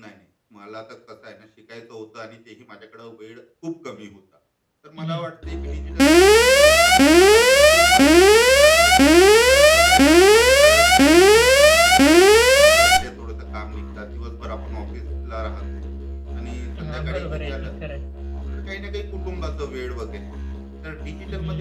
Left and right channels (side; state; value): both; identical; correlation 1.00